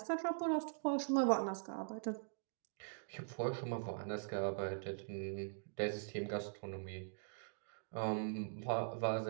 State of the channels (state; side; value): silent; left; digital silence